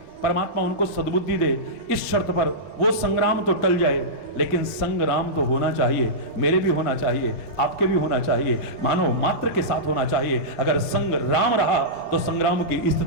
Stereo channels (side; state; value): both; normal; correlation -0.15